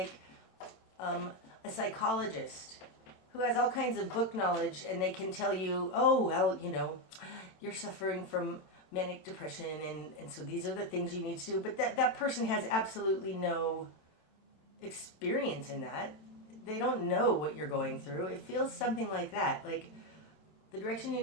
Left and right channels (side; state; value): right; late; 27 ms